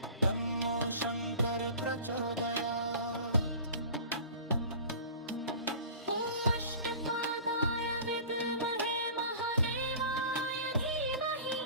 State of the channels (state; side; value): inverted; both; correlation -0.41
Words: तन्नो शङ्कर प्रचोदयात्।